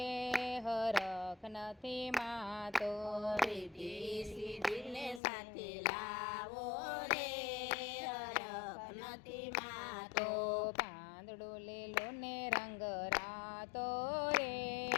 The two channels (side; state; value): right; drops out; at 5.2 s